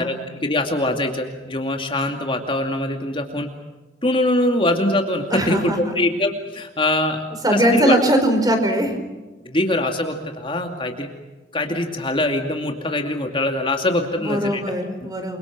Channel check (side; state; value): both; normal; correlation 0.44